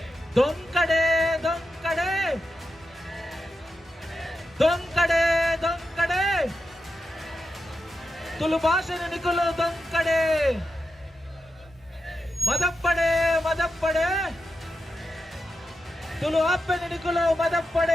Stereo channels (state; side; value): normal; both; correlation 0.88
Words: ದೊಂಕಡೆ ದೊಂಕಡೆ ದೊಂಕಡೆ ದೊಂಕಡೆ ತುಳು ಭಾಷೆನ ನಿಕುಲು ದೊಂಕಡೆ ಮದಪ್ಪಡೆ ಮದಪ್ಪಡೆ ತುಳು ಅಪ್ಪನ ನಿಕುಲು